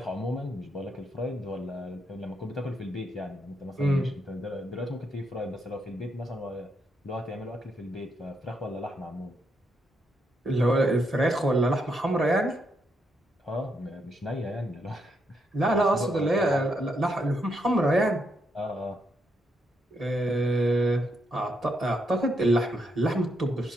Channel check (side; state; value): both; normal; correlation 0.79